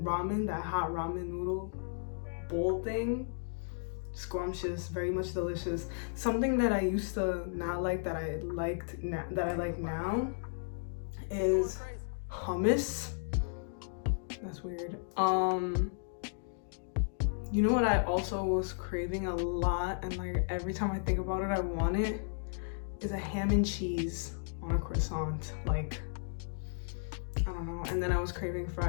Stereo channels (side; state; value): right; silent; digital silence